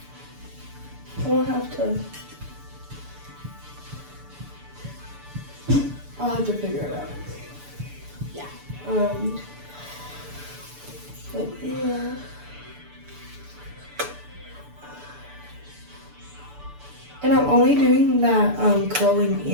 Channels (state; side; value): late; left; 6.9 ms